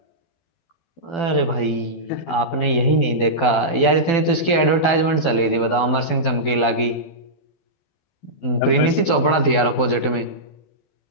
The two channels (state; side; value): late; right; 12 ms